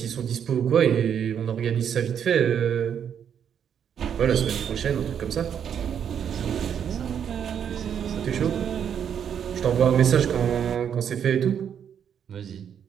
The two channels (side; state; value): left; quieter; 8.4 dB